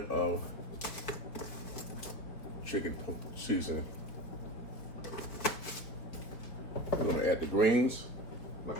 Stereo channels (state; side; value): late; right; 4.5 ms